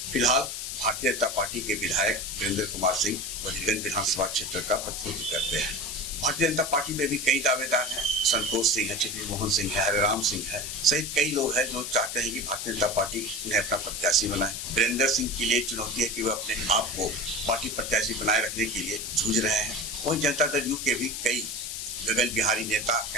फिलहाल भारतीय जनता पार्टी के विधायक वीरेंद्र कुमार सिंह बजीरगंज विधानसभा क्षेत्र का प्रतिनिधित्व करते हैं। भारतीय जनता पार्टी में भी कई दावेदार हैं, संतोष सिंह है, चित्ती मोहन सिंह है, हरिराम सिंह है सहित कई लोग हैं जो चाहते हैं कि भारतीय जनता पार्टी उन्हें अपना प्रत्याशी बनाए। वीरेंद्र सिंह के लिए चुनौती है कि वह अपने आप को पार्टी प्रत्याशी बनाए रखने के लिए जूझ रहे हैं। वहीं जनता दल यू के भी कई गगन बिहारी नेता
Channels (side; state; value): left; noise; hiss, 5 dB below the sound